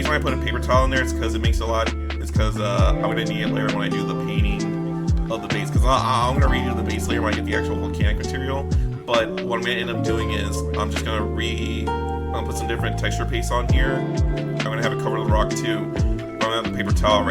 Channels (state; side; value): identical; both; correlation 1.00